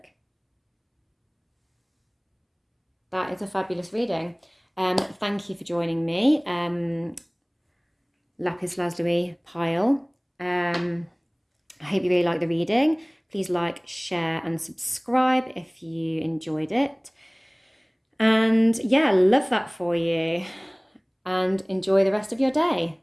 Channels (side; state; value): both; identical; correlation 1.00